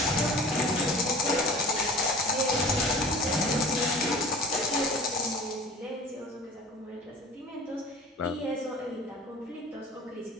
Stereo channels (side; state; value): both; normal; correlation 0.42